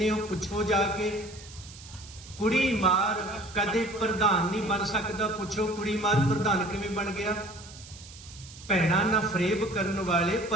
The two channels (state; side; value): noise; right; hiss, 18 dB below the sound